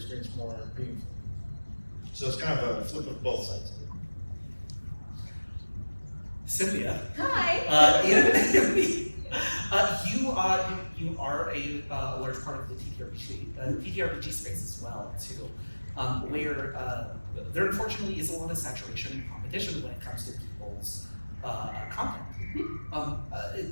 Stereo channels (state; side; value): inverted; both; correlation -1.00